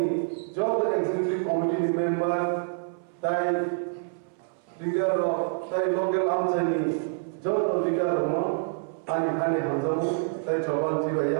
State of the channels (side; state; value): left; silent; 60 dB below the other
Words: Job Executive Committee Member, Tai Leader of Tai Local Amchani, Job Leader of Ani Hanzamu, Tai Chaban